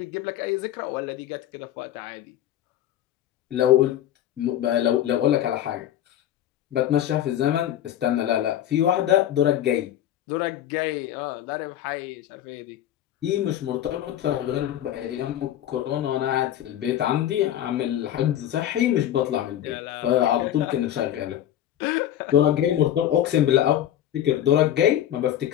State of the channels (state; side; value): quieter; right; 11.5 dB